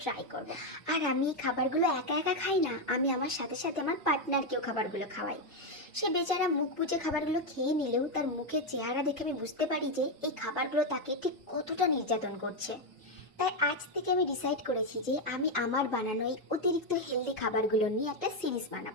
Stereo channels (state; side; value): normal; both; correlation 0.05